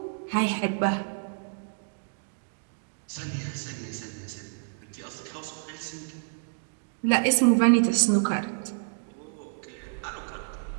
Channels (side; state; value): left; silent; digital silence